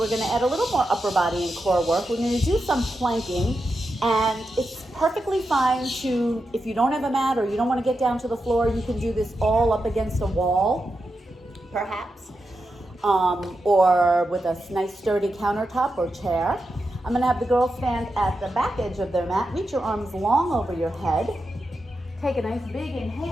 going to add a little more upper body and core work. We're going to do some planking, and it's perfectly fine to, if you don't have a mat or you don't want to get down to the floor, you can do this all up against a wall, perhaps, or with a nice sturdy countertop or chair. I'm going to have the girls stand at the back edge of their mat. Reach your arms long over your head. Take a nice big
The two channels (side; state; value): both; normal; correlation 0.88